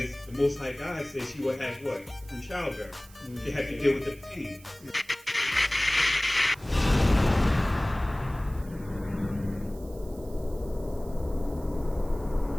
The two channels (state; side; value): noise; right; hiss, 23 dB below the sound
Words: the Most High God said she would have what? From childbirth. She had to deal with the pain.